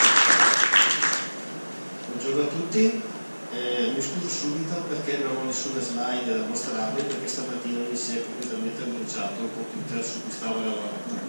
Buongiorno a tutti, mi scuso subito perché non ho nessuna slide da mostrarvi, perché stamattina mi si è completamente bruciato il computer su cui stavo lavorando.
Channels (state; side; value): inverted; both; correlation -1.00